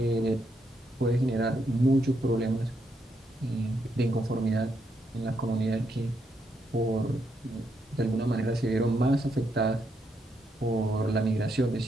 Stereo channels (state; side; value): normal; both; correlation 0.78